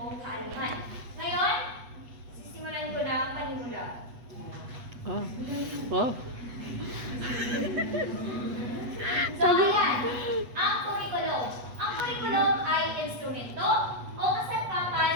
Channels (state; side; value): late; left; 8.2 ms